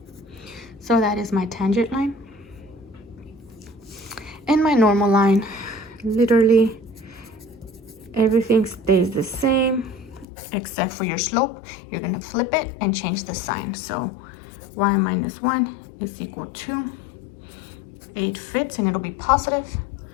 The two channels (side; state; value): right; drops out; at 10.2 s